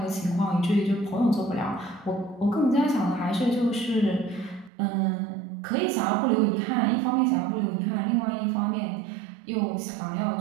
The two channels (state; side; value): drops out; left; at 4.7 s